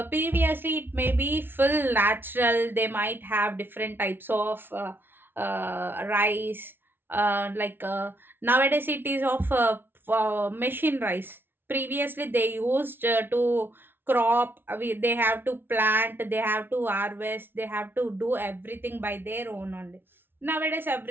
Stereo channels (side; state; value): left; late; 0.10 ms